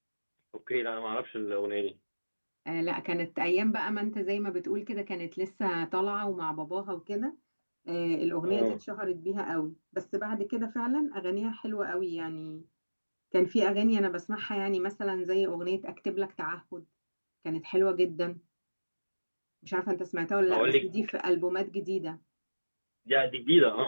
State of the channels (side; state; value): both; inverted; correlation -1.00